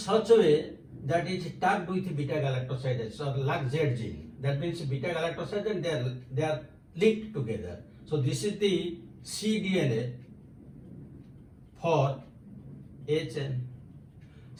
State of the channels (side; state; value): both; identical; correlation 1.00